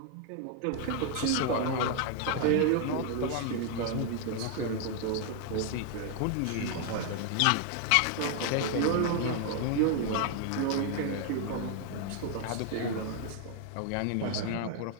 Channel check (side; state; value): both; different; correlation 0.00